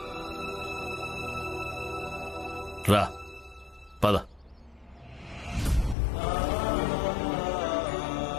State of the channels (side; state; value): right; drops out; at 6.0 s